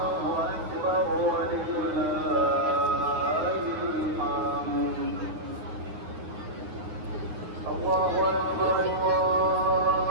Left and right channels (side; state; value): left; late; 9.7 ms